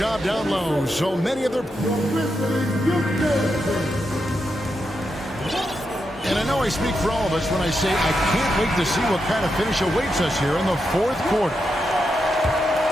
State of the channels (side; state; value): both; normal; correlation 0.85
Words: down low. So many of their... And I know I speak for all of us when I say I can't wait to see what kind of finish awaits us here in the fourth quarter.